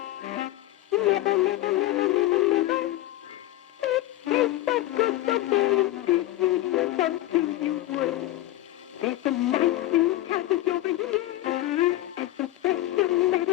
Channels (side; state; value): right; quieter; 15.7 dB